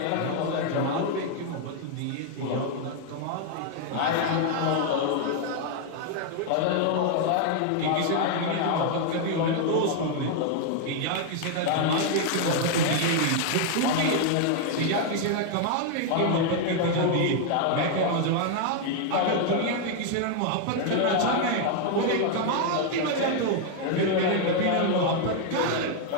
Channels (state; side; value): different; both; correlation 0.00